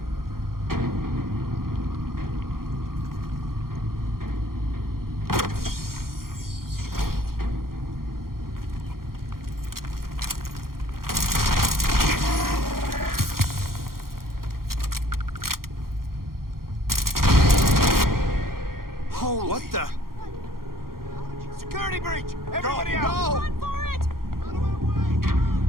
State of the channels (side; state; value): left; late; 0.92 ms